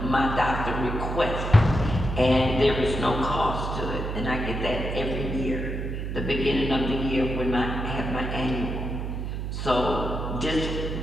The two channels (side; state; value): right; noise; hum, 4 dB below the sound